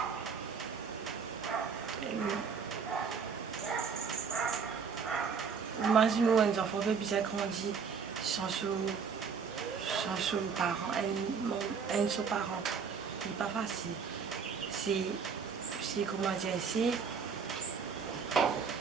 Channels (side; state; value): left; quieter; 6.0 dB